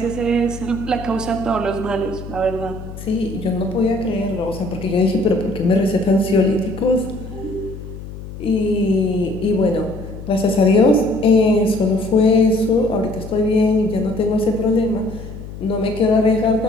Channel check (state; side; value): noise; left; hum, 12 dB below the sound